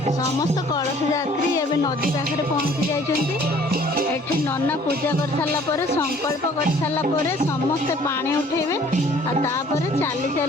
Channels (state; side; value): normal; both; correlation 0.55